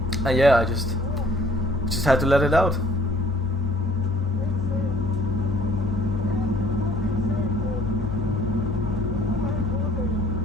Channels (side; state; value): both; normal; correlation 0.57